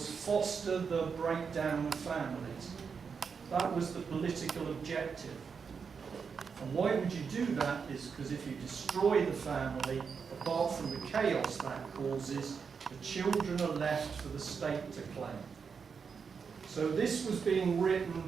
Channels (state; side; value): quieter; left; 5.9 dB